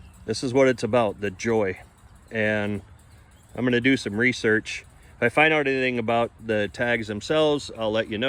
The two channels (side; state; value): both; identical; correlation 1.00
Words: This is what it's about, the joy. And I'm gonna do some research. If I find out anything about the tags themselves, I'll let you